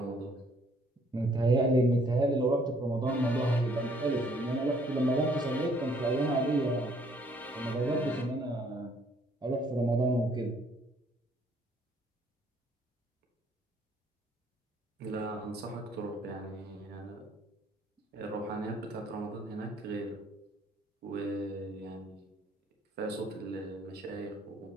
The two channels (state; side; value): normal; both; correlation 0.63